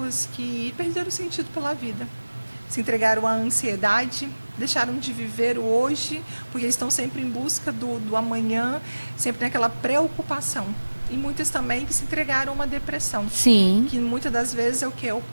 que perderam o sentido pela vida. Se entregaram à ansiedade, deixaram de viver o hoje, porque estão sempre em busca do amanhã, sempre naquela preocupação. E muitas também que se entregaram a uma depressão. Sim. Que muitas das vezes é o que? O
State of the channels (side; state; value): both; inverted; correlation -1.00